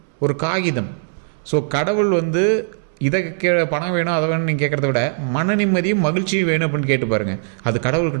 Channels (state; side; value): silent; left; digital silence